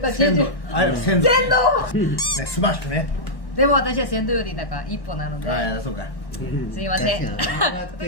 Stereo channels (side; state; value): right; late; 1.1 ms